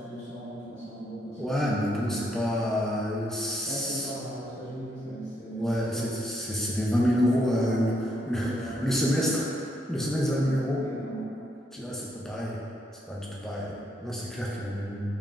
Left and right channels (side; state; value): both; normal; correlation 0.76